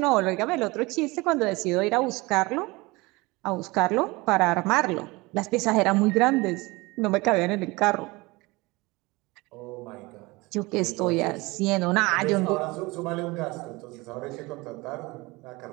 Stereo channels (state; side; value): quieter; left; 23.3 dB